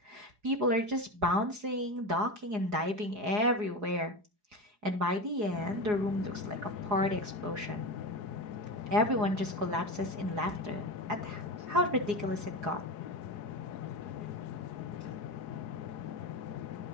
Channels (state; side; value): late; left; 4.8 ms